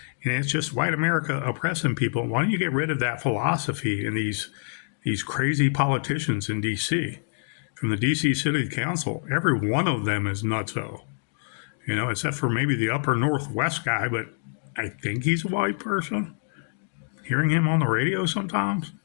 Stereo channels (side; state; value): right; silent; digital silence